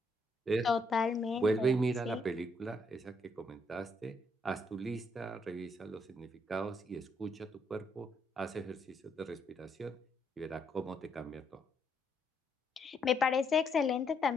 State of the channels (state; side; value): normal; both; correlation 0.74